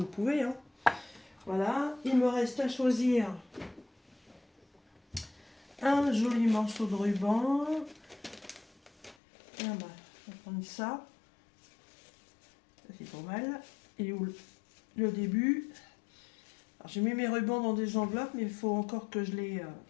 pouvez. Hein. Voilà, il me reste à choisir un joli morceau de ruban. Ah bah, on va prendre ça. Ça c'est pas mal. Et où le début. Alors j'ai mis mes rubans dans des enveloppes, mais il faut encore que je les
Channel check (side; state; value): right; drops out; at 9.2 s